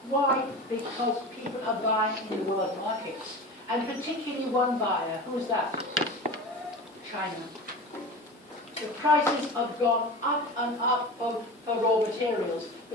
Why? Because people are buying in the world markets. And particularly one buyer. Who's that? China. The prices have gone up and up for raw materials,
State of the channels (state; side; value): normal; both; correlation 0.32